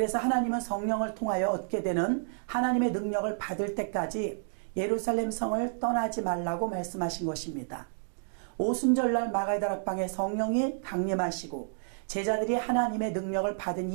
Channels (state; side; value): silent; left; digital silence